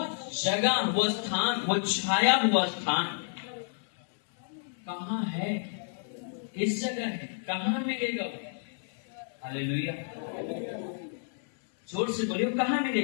जगह, वो स्थान, वो छाया हुआ स्थान कहाँ है? किस जगह है? कहाँ मिलेगा वो? हालेलुया। जोर से बोलिए, कहाँ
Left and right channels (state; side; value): silent; right; 58 dB below the other